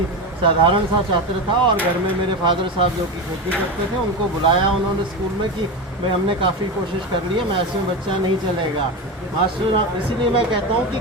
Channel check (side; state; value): both; normal; correlation 0.21